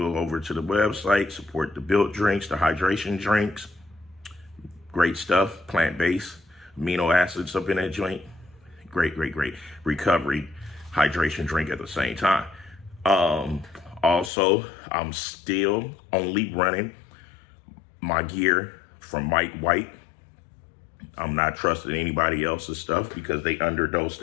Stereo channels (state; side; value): drops out; right; at 14.3 s